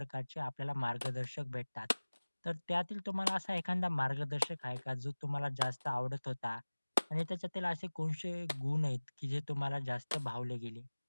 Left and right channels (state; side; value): inverted; both; correlation -1.00